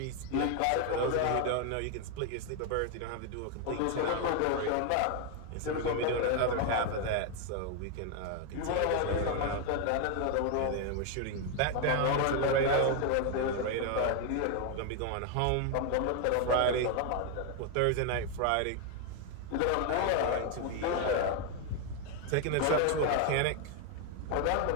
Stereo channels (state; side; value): different; both; correlation 0.01